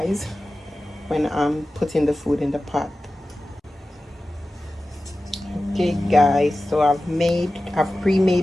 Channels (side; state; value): both; normal; correlation 0.95